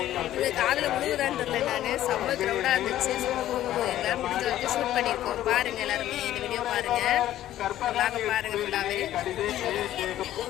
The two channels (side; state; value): right; quieter; 13.1 dB